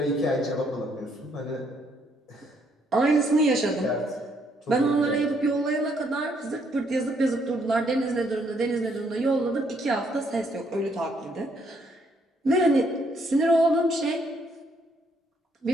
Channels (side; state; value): both; normal; correlation 0.70